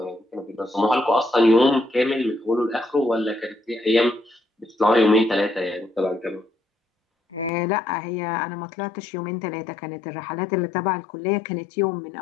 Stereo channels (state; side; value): drops out; right; at 7.5 s